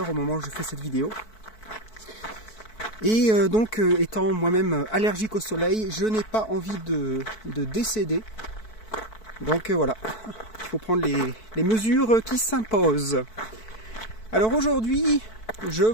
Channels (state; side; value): late; right; 4.6 ms